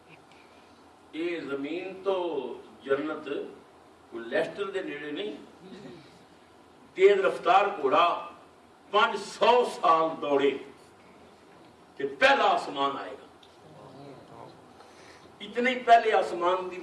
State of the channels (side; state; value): both; identical; correlation 1.00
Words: یہ زمین تو جنت لیسٹر دے نیڑے نہیں. تیز رفتار گھوڑا 500 سال دوڑے کہ پہلا آسمان آئے گا. اتنے پہلے آسمان دی